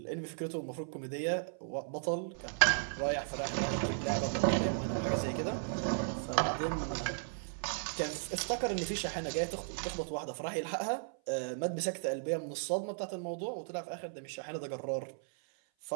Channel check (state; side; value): silent; left; 54 dB below the other